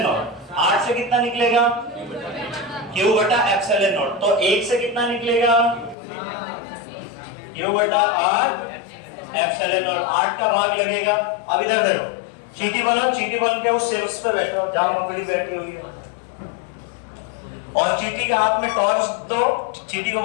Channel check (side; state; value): right; drops out; at 6.0 s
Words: नॉट। 8 से कितना निकलेगा? क्यू बटा एप्सिलॉन नॉट। तो 1 से कितना निकलेगा? क्यू बटा 8 एप्सिलॉन नॉट। 8 का भाग लगेगा। अब इधर देखो, चीटी बनो, चीटी बन के उस शीर्ष पे बैठो जहां मकड़ी बैठी हुई है, और चीटी के हाथ में टॉर्च दो। चीटी को